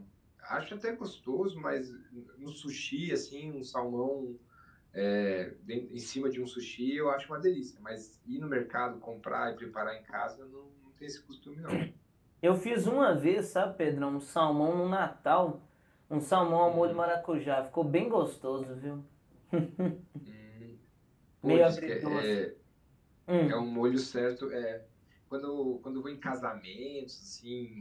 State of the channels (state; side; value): identical; both; correlation 1.00